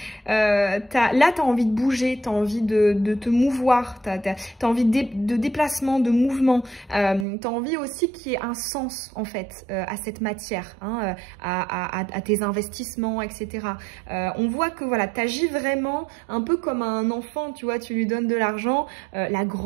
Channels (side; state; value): left; drops out; at 7.2 s